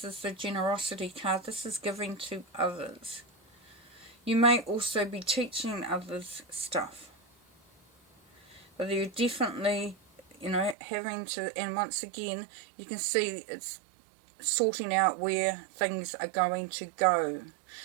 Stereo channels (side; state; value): left; drops out; at 10.8 s